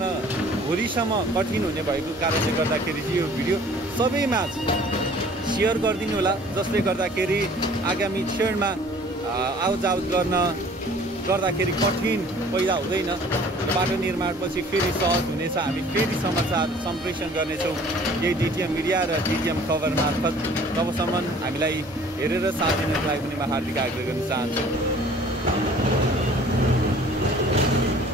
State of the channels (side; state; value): both; normal; correlation 0.51